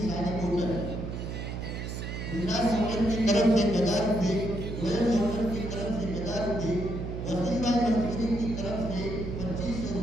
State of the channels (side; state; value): right; noise; hum, 5 dB below the sound